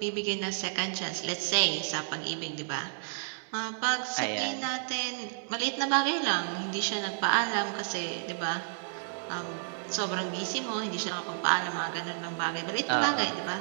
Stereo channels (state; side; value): silent; left; digital silence